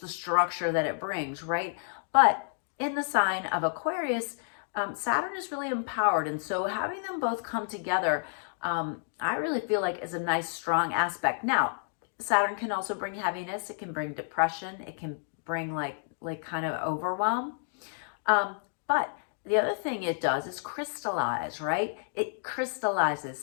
structure that it brings, right? But in the sign of Aquarius, Saturn is really empowered. And so having them both come together, I really feel like is a nice, strong aspect. Now, Saturn can also bring heaviness. It can bring depression. It can bring like kind of overwhelm. But the other thing it does is crystallize, right? It crystallizes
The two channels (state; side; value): silent; right; digital silence